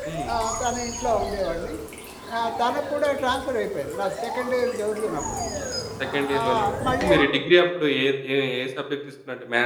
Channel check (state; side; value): identical; both; correlation 1.00